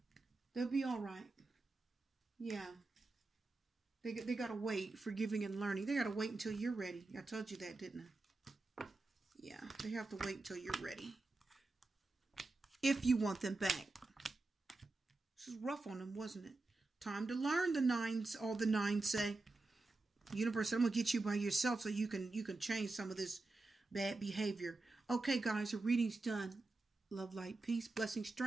They'll be all right. Yeah. They got to wait. Forgiving and learning. They got to wait until you're ready. I told you that, didn't I? Yeah, they have to wait until you're ready. If you want them back. This is rough on them, wasn't it? Time to learn, the nines, all the nines say. Universe, I'm going to get you by yourself so you can change some of this bad behavior. Okay, guys, the reading's done. Love, light, peace, blessing,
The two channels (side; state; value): left; quieter; 3.3 dB